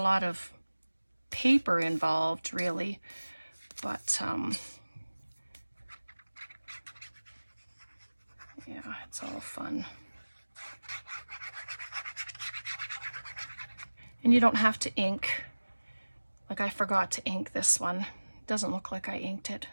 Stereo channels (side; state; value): both; inverted; correlation -1.00